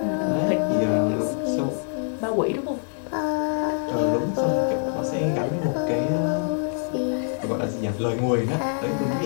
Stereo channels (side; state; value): right; silent; digital silence